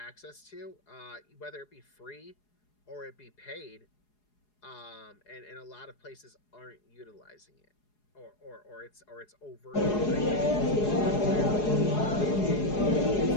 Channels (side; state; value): right; late; 4.8 ms